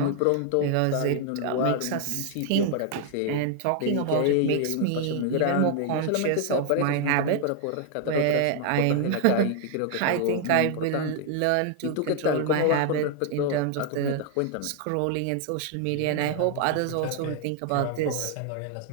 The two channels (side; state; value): both; different; correlation 0.00